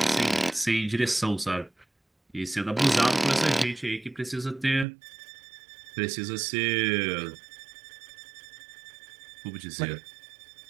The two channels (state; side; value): drops out; left; at 4.9 s